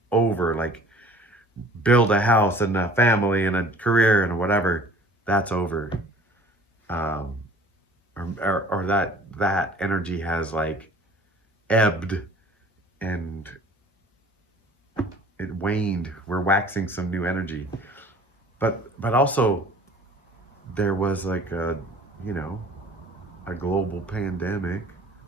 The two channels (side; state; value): both; normal; correlation 0.49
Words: over. Like, build a house and a family and a career and whatever, that's over. um or that energy has like ebbed, and it waned. We're waxing some new energy, but also there was like a, you know, a global pandemic